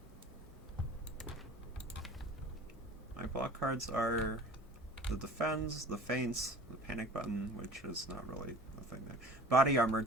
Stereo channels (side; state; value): both; normal; correlation 0.43